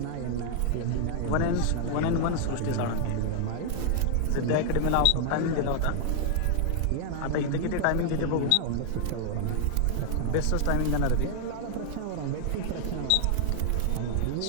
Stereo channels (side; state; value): both; different; correlation 0.00